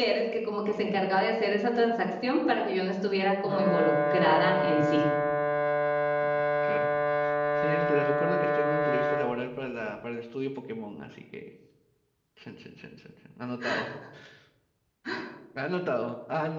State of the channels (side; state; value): both; identical; correlation 1.00